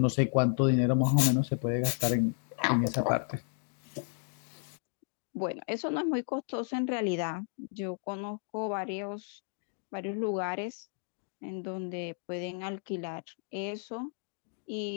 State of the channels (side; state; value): right; silent; 56 dB below the other